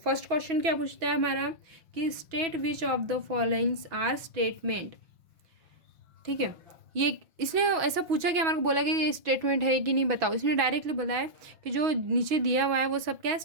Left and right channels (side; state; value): left; late; 5.7 ms